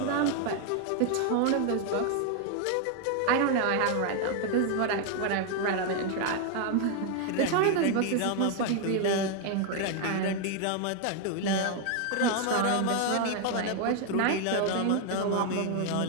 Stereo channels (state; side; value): different; both; correlation 0.00